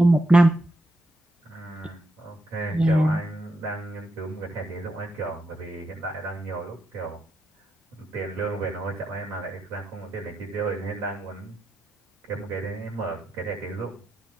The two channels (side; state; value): both; normal; correlation 0.85